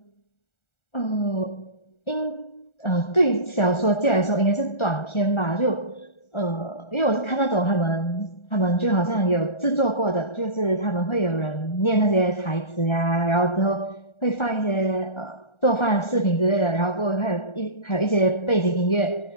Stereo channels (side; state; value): right; late; 1.4 ms